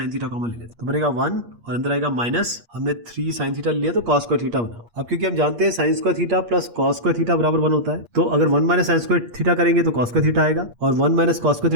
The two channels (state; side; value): late; left; 8.5 ms